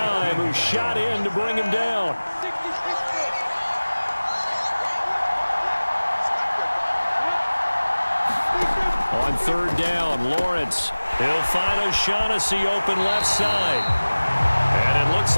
who shot in to bring him down. On 3rd down, Lawrence. He'll find O'Shaughnessy open left side. And it looks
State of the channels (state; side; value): inverted; both; correlation -1.00